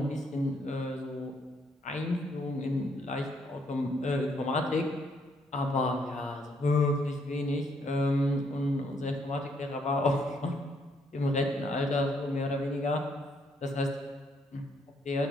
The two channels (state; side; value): normal; both; correlation 0.71